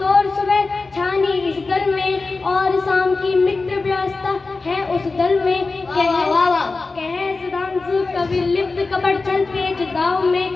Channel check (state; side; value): quieter; right; 3.8 dB